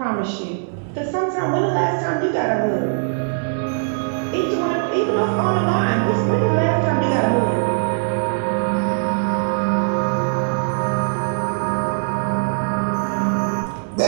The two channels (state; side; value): silent; left; digital silence